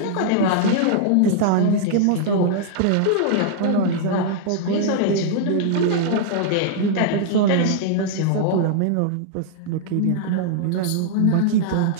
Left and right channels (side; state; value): both; different; correlation -0.01